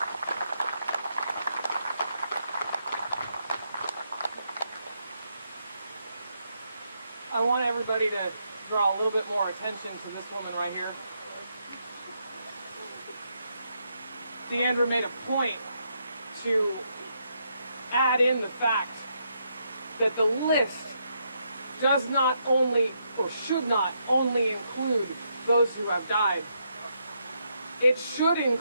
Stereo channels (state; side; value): inverted; both; correlation -0.78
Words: I want everybody to draw a little bit more attention to this woman right here. Deandra made a point to add in the fact that the list does not only, or should not only include those who have died. It should